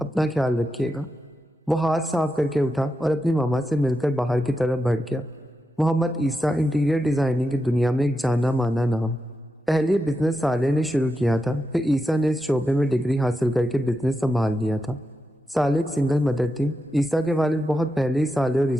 خیال رکھیے گا۔ وہ ہاتھ صاف کر کے اٹھا اور اپنی ماما سے مل کر باہر کی طرف بڑھ گیا۔ محمد عیسیٰ انٹیریئر ڈیزائننگ کی دنیا میں ایک جانا مانا نام۔ پہلے بزنس سالے نے شروع کیا تھا، پھر عیسیٰ نے اس شعبے میں ڈگری حاصل کر کے بزنس سنبھال لیا تھا۔ سالے ایک سنگل مدر تھی۔ عیسیٰ کے والد بہت پہلے ہی سالے اور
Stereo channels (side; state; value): both; normal; correlation 0.87